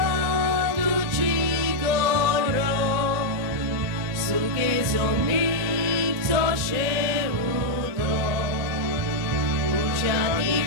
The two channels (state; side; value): late; left; 1.9 ms